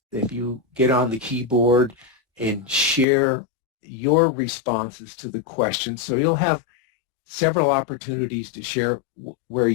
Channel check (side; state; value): right; drops out; at 3.1 s